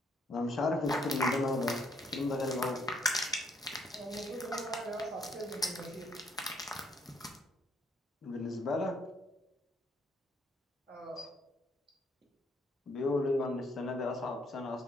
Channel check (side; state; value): both; normal; correlation 0.68